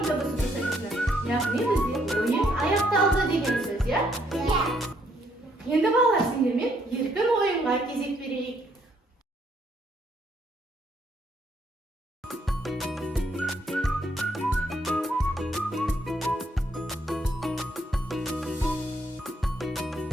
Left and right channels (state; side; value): normal; both; correlation 0.70